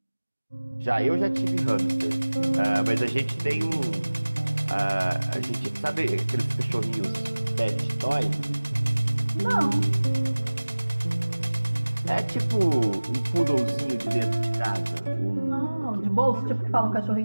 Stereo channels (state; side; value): inverted; both; correlation -1.00